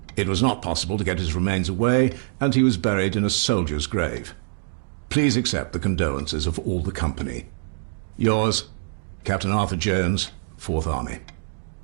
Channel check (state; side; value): silent; left; digital silence